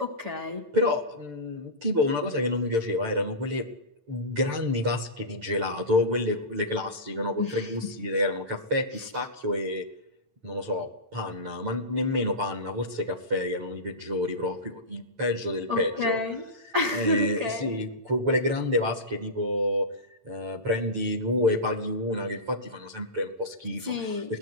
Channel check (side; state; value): left; late; 8.9 ms